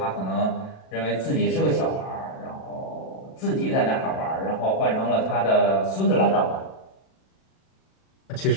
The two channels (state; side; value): late; right; 37 ms